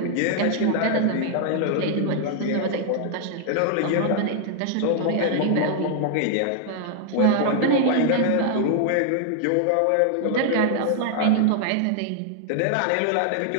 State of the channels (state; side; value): different; both; correlation 0.00